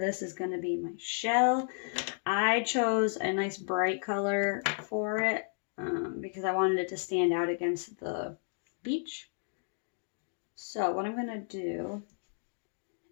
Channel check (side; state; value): right; silent; 56 dB below the other